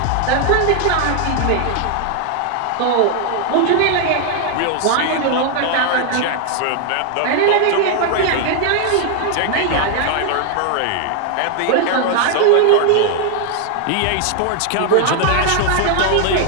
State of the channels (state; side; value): different; both; correlation 0.00